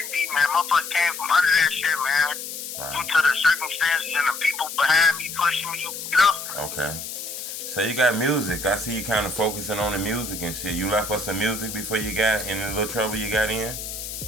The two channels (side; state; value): left; noise; hiss, 8 dB below the sound